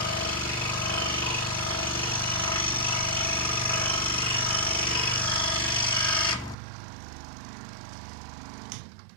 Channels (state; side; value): drops out; left; at 6.6 s